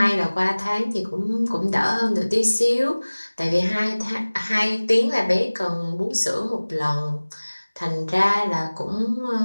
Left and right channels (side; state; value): both; inverted; correlation -1.00